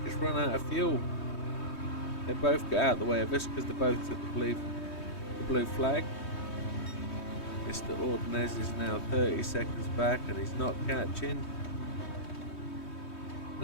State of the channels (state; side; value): late; right; 3.2 ms